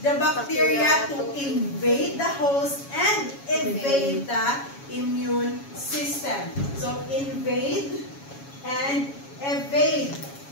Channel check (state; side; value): late; right; 7.2 ms